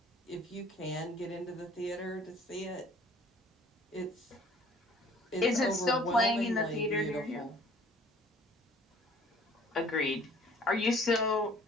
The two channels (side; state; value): both; normal; correlation 0.54